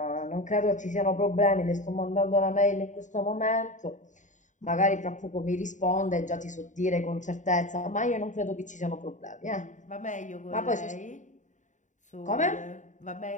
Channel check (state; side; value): late; right; 0.36 ms